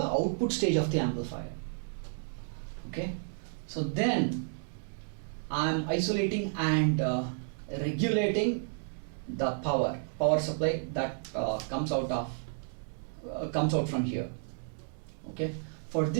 output stage of the amplifier. Okay, so then I am isolating and regulating the power supply that comes out from here. Okay, for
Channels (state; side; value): silent; left; digital silence